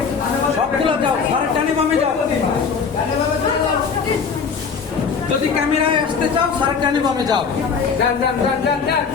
সবগুলো যাও, স্যারের ডানে বামে যাও। যদি ক্যামেরায় আসতে চাও স্যারের ডানে বামে যাও। যান যান যান যান যান।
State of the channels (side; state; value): right; quieter; 5.8 dB